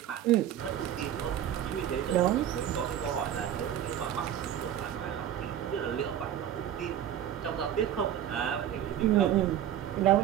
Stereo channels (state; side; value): quieter; left; 10.7 dB